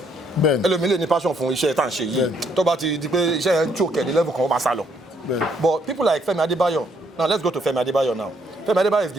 ẹlòmíì lè ní passion fún iṣẹ́ tá à ń ṣe yìí tó bá ti di pé iṣẹ́ yẹn choke ẹ̀ ní level kan ó bá sá lọ but people like Fẹ́mi Adébáyọ̀ now let's go to Fẹ́mi Adébáyọ̀ now Fẹ́mi Adébáyọ̀ is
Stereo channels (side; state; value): both; normal; correlation 0.70